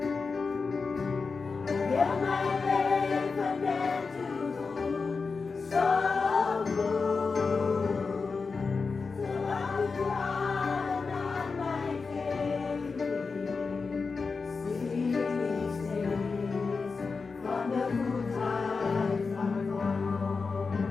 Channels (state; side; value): quieter; right; 4.6 dB